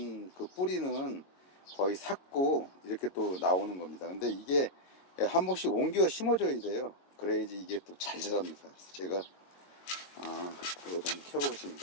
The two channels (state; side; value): late; right; 22 ms